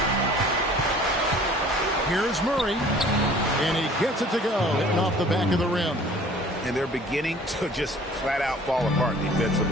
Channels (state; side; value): normal; both; correlation 0.50